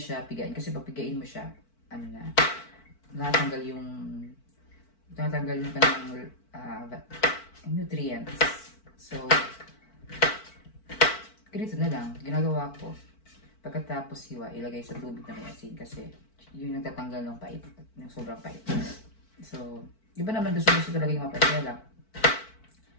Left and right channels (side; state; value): right; late; 4.5 ms